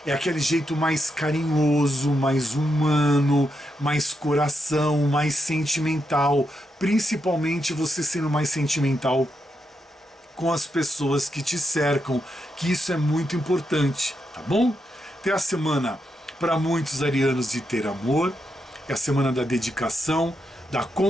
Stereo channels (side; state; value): both; normal; correlation 0.83